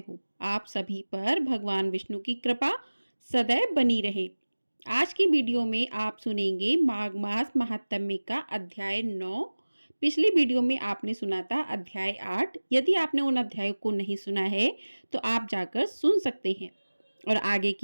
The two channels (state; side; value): inverted; both; correlation -1.00